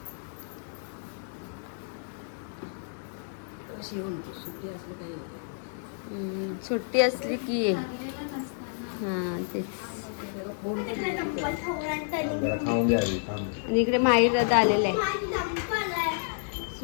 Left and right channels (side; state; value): right; silent; digital silence